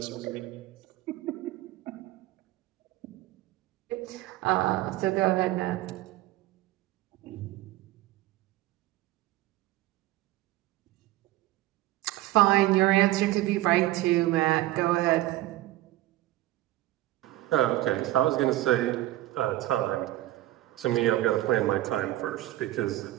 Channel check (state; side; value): quieter; left; 16.1 dB